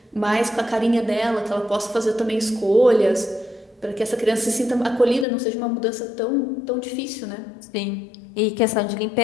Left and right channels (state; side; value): drops out; right; at 5.2 s